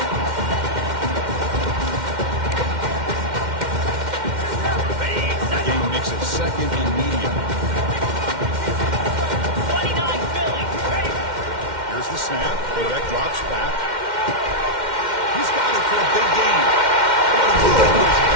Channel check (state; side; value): late; left; 2.1 ms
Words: The game makes it 2nd and medium. 29 Philly. Ready? Here's the snap. Quarterback drops back. He's got it for a big gain. What a move. He's